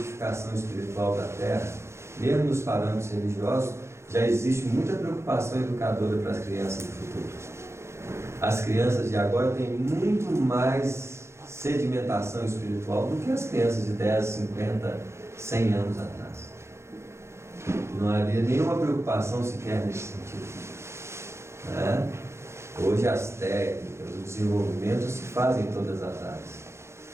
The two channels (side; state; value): left; late; 0.13 ms